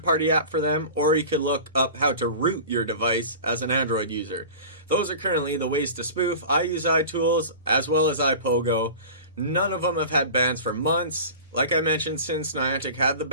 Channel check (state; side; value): inverted; both; correlation -0.36